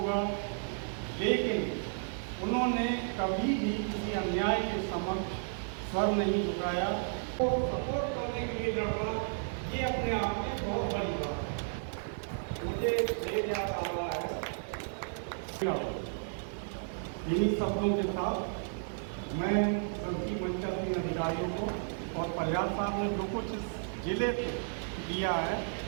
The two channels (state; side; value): silent; left; digital silence